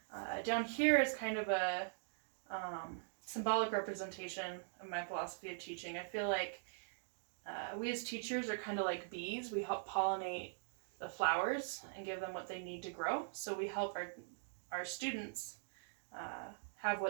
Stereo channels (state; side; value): silent; left; digital silence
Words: Down here is kind of a symbolic representation of my philosophy of teaching. I feel like we as teachers are kind of like bees. We help pollinate the flowers and give them what they need to grow. So we help our students have